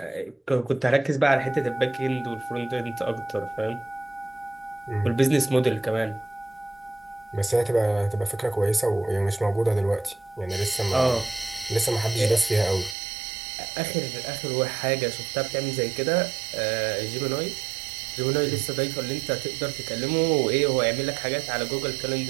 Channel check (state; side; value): drops out; left; at 13.0 s